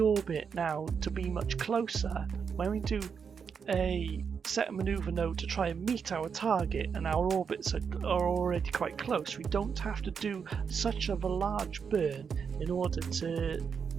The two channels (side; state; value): left; quieter; 6.4 dB